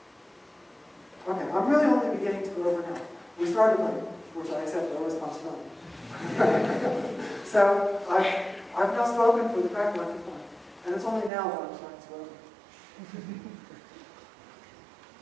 Okay, I'm really only beginning to go over now. We started late, which I accept no responsibility. So I've now spoken for the correct length of time, and it's only now that I'm starting to go over.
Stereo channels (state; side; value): drops out; left; at 11.3 s